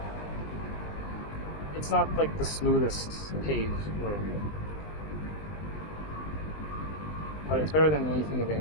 it's not like the smoothest paved road. But it's better than anything in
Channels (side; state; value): right; late; 20 ms